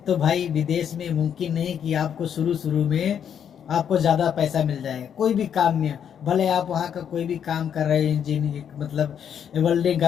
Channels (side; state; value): right; quieter; 8.5 dB